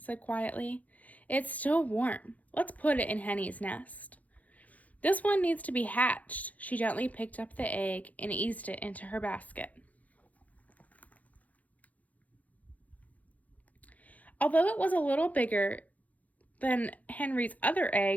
quietly. It's still warm. Let's put it in Henny's nest. This one needs to be hatched. She gently picked up the egg and eased it into her basket. Although it was a little bigger than Henry's other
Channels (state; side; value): late; right; 0.074 ms